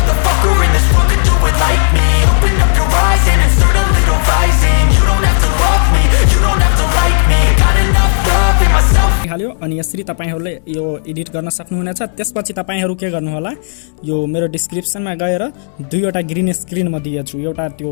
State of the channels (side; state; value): right; silent; digital silence